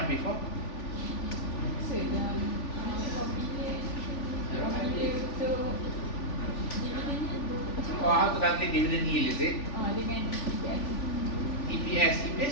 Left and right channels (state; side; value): late; right; 3.4 ms